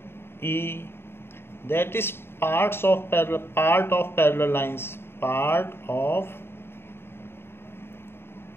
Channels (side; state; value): right; late; 0.11 ms